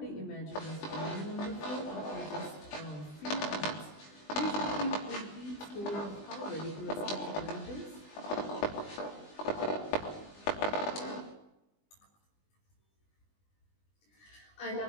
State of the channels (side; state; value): right; late; 20 ms